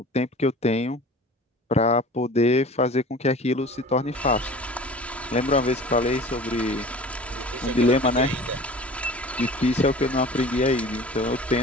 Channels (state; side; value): normal; both; correlation 0.41